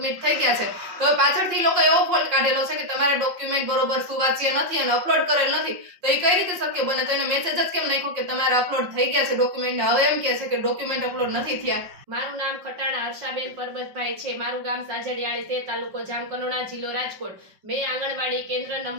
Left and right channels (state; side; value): late; left; 5.7 ms